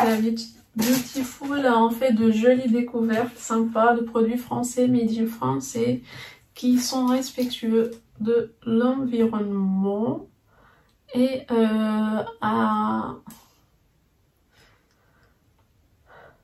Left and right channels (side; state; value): both; identical; correlation 1.00